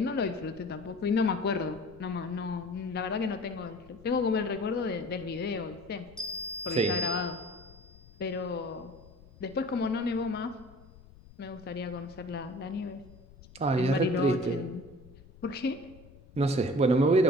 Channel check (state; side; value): noise; left; rumble, 22 dB below the sound